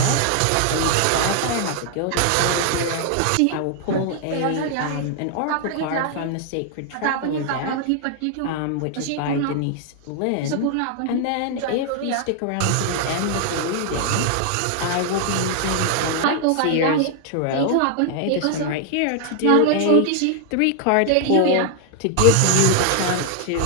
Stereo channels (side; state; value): both; different; correlation 0.00